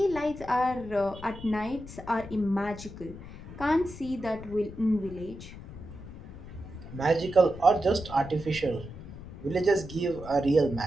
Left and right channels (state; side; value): noise; left; rumble, 14 dB below the sound